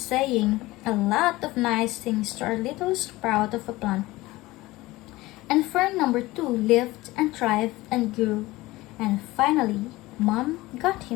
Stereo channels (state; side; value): quieter; right; 19.3 dB